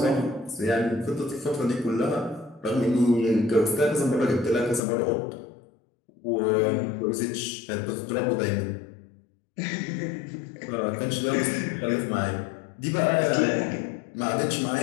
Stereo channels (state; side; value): drops out; right; at 4.8 s